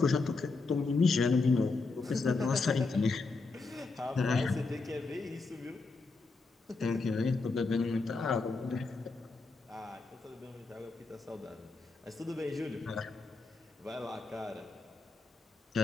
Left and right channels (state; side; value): quieter; right; 3.9 dB